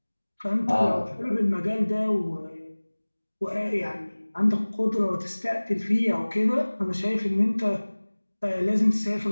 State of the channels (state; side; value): inverted; both; correlation -1.00